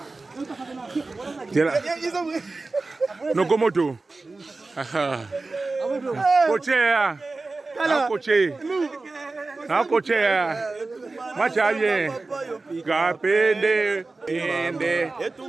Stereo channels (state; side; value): quieter; left; 3.5 dB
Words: tela nokomoto kochea akochea macha bien kapende ende